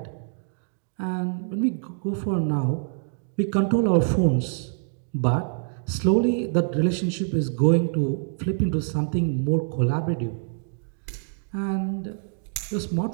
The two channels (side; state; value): left; silent; digital silence